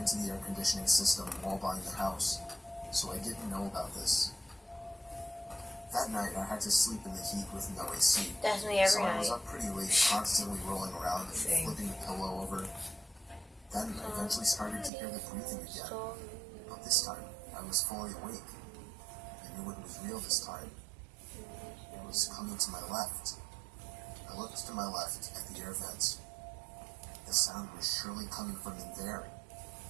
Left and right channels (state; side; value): drops out; left; at 14.9 s